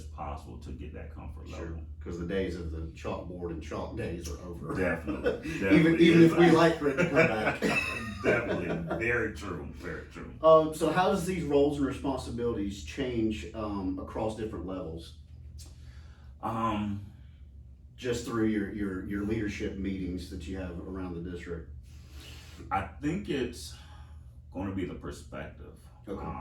possible to get that comfort level. Because the days of the chalkboard and chalk days are over. Definitely. even if we like for it to come back. Definitely. Very true. Very true. So how does these roles and responsibilities change across different levels? Just through your leadership meetings that you have around the district. I think it's going to be the perspective.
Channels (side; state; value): both; identical; correlation 1.00